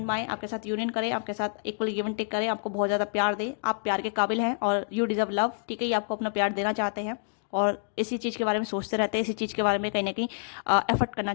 में आए, आपके साथ यूनियन करें, आपके साथ इक्वल गिव एंड टेक करें, आपको बहुत ज़्यादा प्यार दें। आप प्यार के काबिल हैं और यू डिजर्व लव। ठीक है, ये आपको अपना प्यार देना चाहते हैं और इसी चीज़ के बारे में सोचते रहते हैं, इसी चीज़ के बारे में कहीं ना कहीं एफर्ट करना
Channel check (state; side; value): silent; right; digital silence